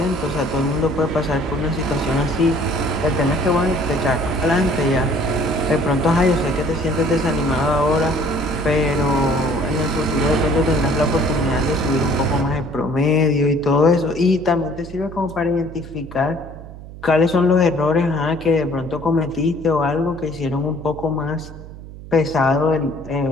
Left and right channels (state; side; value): noise; right; hum, 15 dB below the sound